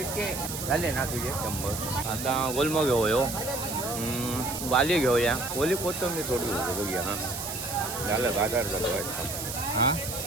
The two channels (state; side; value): noise; right; hiss, 6 dB below the sound